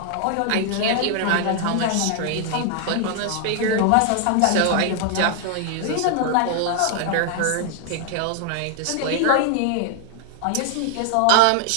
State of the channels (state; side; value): different; both; correlation 0.00